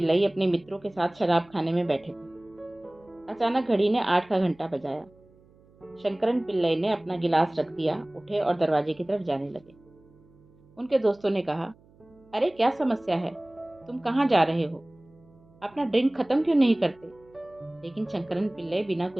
अपने मित्रों के साथ शराब खाने में बैठे थे। अचानक घड़ी ने 8 का घंटा बजाया। शंकरन पिल्लई ने अपना गिलास रख दिया, उठे और दरवाजे की तरफ जाने लगे। उनके दोस्तों ने कहा, अरे क्या समस्या है, तुम कहाँ जा रहे हो? अपना ड्रिंक खत्म क्यों नहीं करते? लेकिन शंकरन पिल्लई बिना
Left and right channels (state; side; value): noise; right; hum, 29 dB below the sound